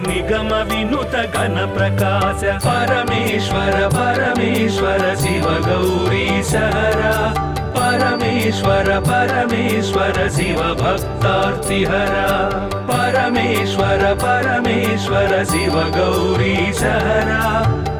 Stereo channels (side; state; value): both; identical; correlation 1.00